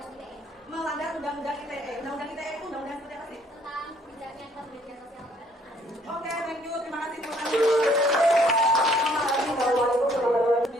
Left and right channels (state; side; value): normal; both; correlation 0.63